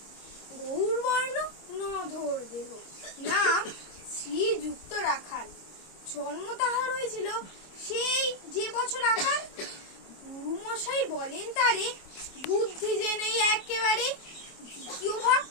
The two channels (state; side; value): late; right; 26 ms